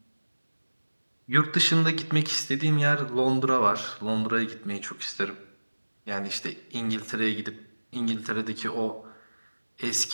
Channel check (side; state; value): both; inverted; correlation -1.00